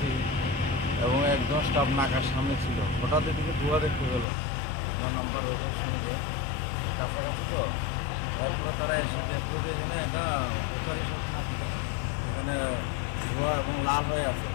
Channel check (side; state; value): right; drops out; at 4.2 s